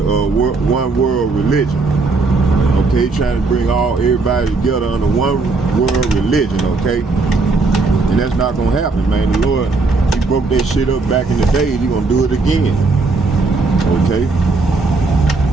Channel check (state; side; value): quieter; left; 3.7 dB